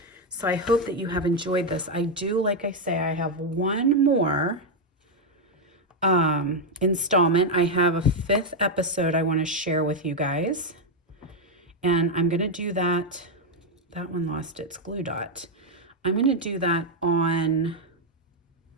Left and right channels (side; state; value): both; normal; correlation 0.03